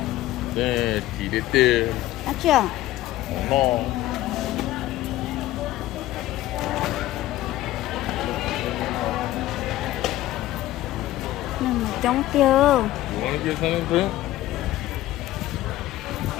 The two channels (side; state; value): right; quieter; 15.4 dB